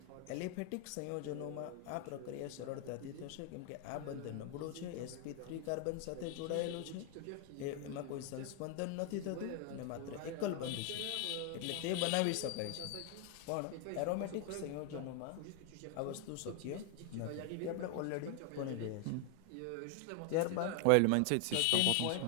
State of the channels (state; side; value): different; both; correlation 0.00